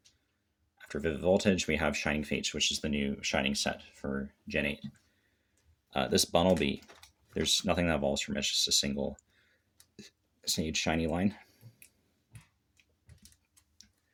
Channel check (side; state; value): both; identical; correlation 1.00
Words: After Vivid Voltage, we have Shining Fates, which is the new Shining set for Gen 8. This Bunnelby, there's nothing that evolves from it, it's just a single stage shiny line.